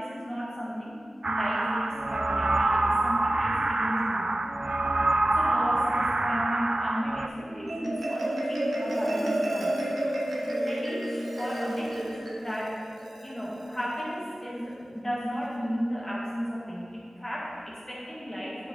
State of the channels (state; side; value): normal; both; correlation 0.95